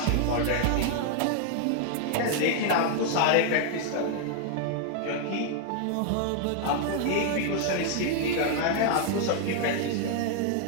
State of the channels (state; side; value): different; both; correlation 0.00